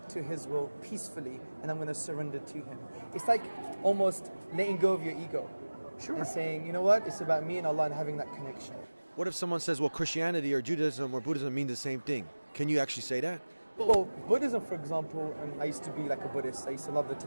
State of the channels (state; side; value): inverted; both; correlation -1.00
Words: to His will peacefully, and I'm going to surrender to Him. It's like almost letting go of your ego. Sure. And saying, you know what, it's about me and Allah and having that connection. What if someone says, well, Christianity or Judaism or Buddhism mean the same thing? Can you actually say that? Well, Buddhism, for example, I used to be like a Buddhist. I used to love the